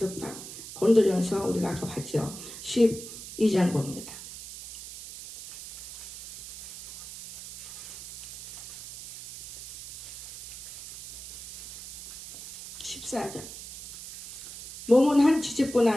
고린도전서 우리가 아까 봤죠. 12장 봅니다. 14절. 몸은 한 지체뿐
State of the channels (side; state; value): right; noise; hiss, 13 dB below the sound